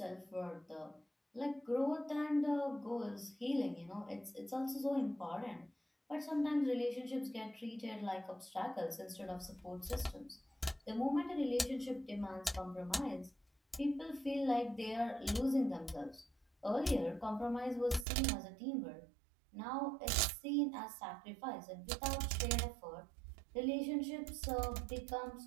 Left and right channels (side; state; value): left; drops out; at 18.1 s